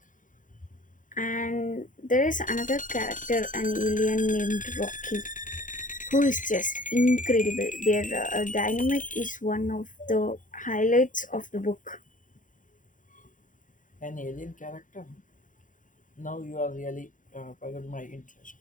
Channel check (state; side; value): late; right; 0.38 ms